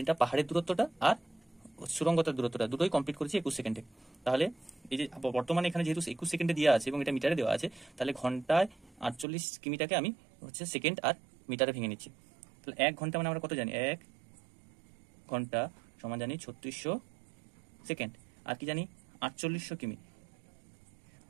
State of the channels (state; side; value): drops out; left; at 9.2 s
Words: পাহাড়ের দূরত্বটা আর সুড়ঙ্গতার দূরত্বটা দুটোই কমপ্লিট করেছে 21 সেকেন্ডে। তাহলে এই যে বর্তমানে এখানে যেহেতু 21 সেকেন্ডে দেওয়া আছে এবং এটা মিটারে দেওয়া আছে, তাহলে ঘন্টায় 48 কিমিটাকে আমি সেকেন্ড আর মিটারে ভেঙে নিচ্ছি। তাহলে 1 ঘন্টা মানে আমরা কত জানি, 1 ঘন্টা সমান জানি 3600 সেকেন্ড, আর কি জানি 4800 কিমি।